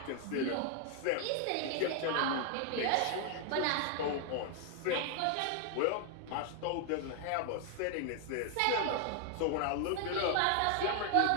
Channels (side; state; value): both; different; correlation 0.00